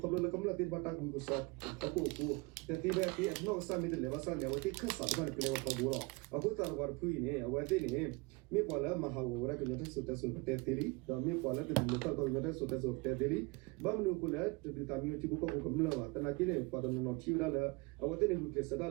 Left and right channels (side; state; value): left; quieter; 26.6 dB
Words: le kamla tin bata ku so ta ko ku te ti be ti no sa mi de le ba sa ne wati khasa ba ne kle ko bu ro aku tar war phui ne wati ne mi kwala mahawara ko nyata su ta su te tiri da mi kwala te lo ta ko nyata su ta su te tiri ba mu ko le te ta mi ti ko ko kamla ba ta na ki ne pa no ti ra la awate ne ku ke sa